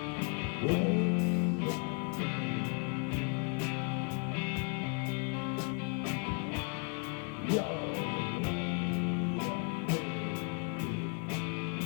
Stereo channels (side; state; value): right; quieter; 37.3 dB